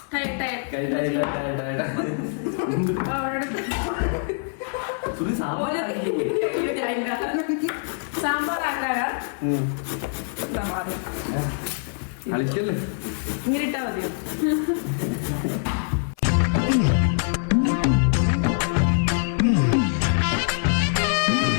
സാമ്പാർ ആക്കാനാ കളിക്കല്ലേ? ഇങ്ങനെ ഇട്ടാ മതിയോ?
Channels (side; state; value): right; silent; 58 dB below the other